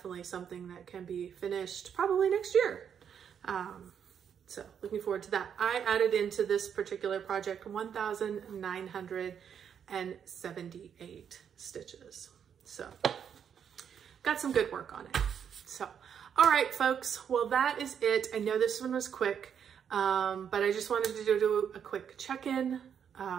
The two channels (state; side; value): quieter; left; 8.0 dB